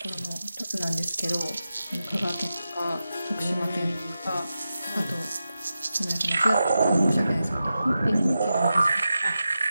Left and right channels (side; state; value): both; inverted; correlation -0.91